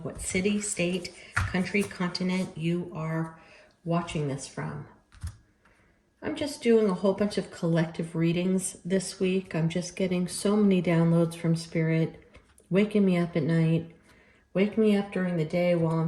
what city, state, country, continent you are watching this from. I'm just doing a whole bunch of collective readings this week. I'm just getting so many downloads from Spirit, waking me up at night, waking me up during the day while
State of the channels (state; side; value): identical; both; correlation 1.00